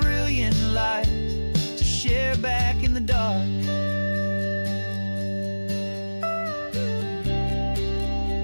light to share back in the dark.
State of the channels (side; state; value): both; inverted; correlation -1.00